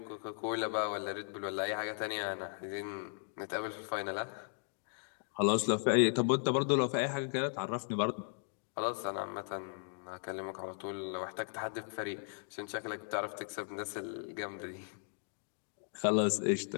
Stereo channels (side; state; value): right; silent; 53 dB below the other